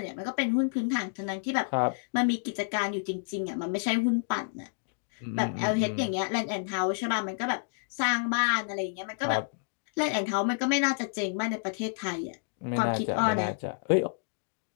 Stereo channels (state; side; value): silent; right; digital silence